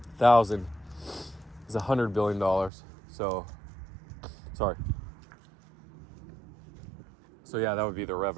1,000 is $100 billion. So yeah, that would be their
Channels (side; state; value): left; drops out; at 2.7 s